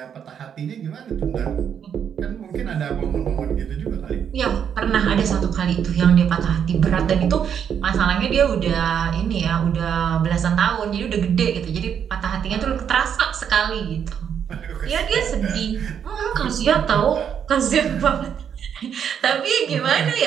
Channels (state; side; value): quieter; left; 8.2 dB